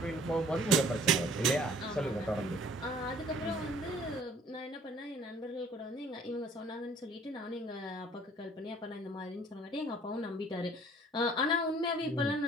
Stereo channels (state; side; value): normal; both; correlation 0.54